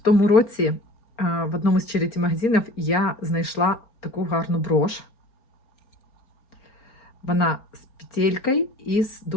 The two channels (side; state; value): right; late; 4.3 ms